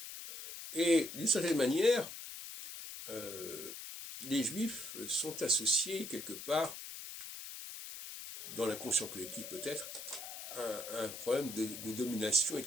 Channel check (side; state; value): left; noise; hiss, 9 dB below the sound